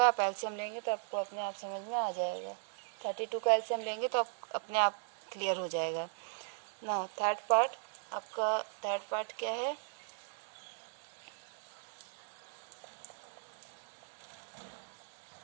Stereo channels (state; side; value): silent; left; digital silence